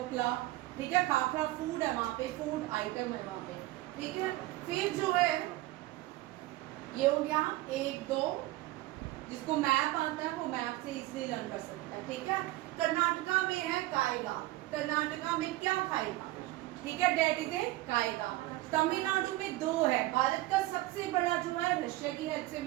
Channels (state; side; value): quieter; left; 17.9 dB